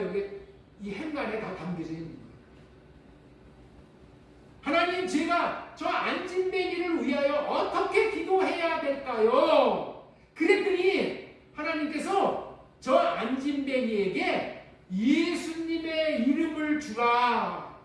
여기 이 행간에 다 담겨져 있는 거예요. 하나님, 제가 저 안진뱅이를 위하여 어떻게 기도해야 될까요? 그랬더니 하나님께서 저 안진뱅이에게 예수님의 이름을 주라.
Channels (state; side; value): identical; both; correlation 1.00